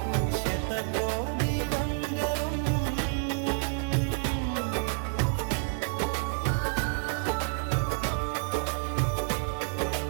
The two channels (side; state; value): left; silent; 57 dB below the other